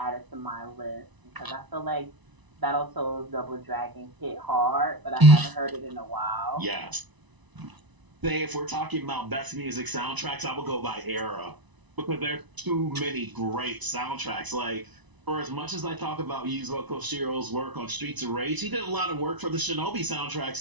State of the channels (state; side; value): late; left; 1.0 ms